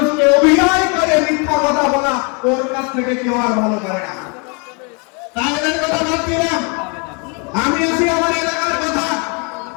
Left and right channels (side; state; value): right; quieter; 34.4 dB